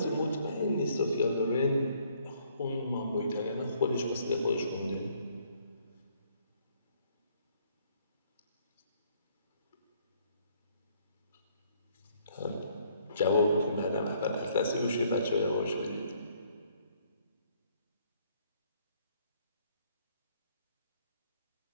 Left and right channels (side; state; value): both; inverted; correlation -0.65